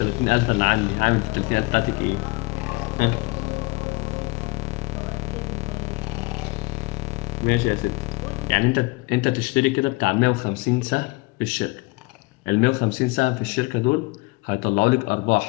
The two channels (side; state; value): right; quieter; 24.9 dB